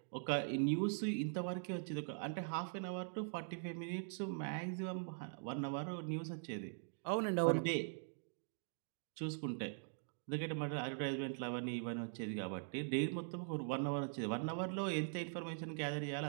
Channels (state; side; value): silent; left; digital silence